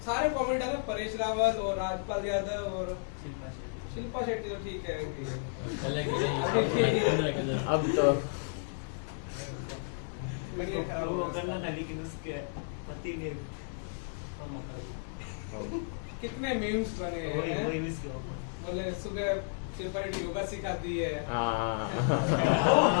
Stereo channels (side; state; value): right; silent; 56 dB below the other